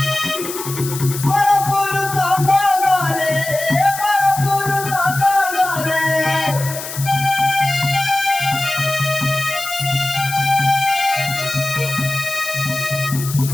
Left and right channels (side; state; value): left; noise; hiss, 9 dB below the sound